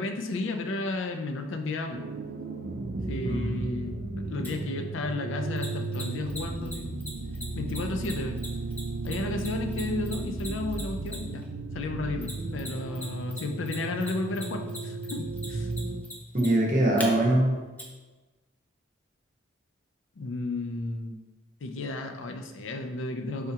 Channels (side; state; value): both; normal; correlation 0.65